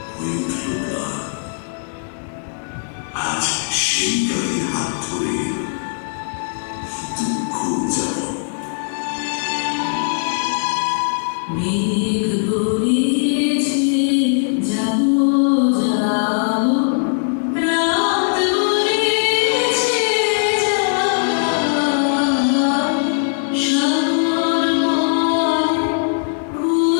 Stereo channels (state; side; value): silent; right; digital silence